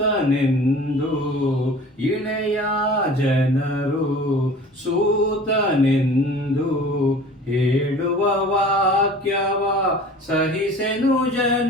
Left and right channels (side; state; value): both; normal; correlation 0.43